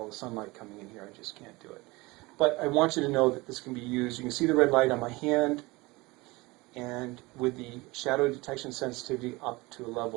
the sunlight coming in here, I just can't do it. But I want you to know that this can be used. You can see the red light on my hand, and with the shadow detection sensitivity up to a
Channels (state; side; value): quieter; left; 22.8 dB